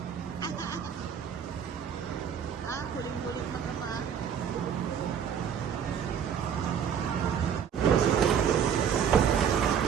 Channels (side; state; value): left; quieter; 8.0 dB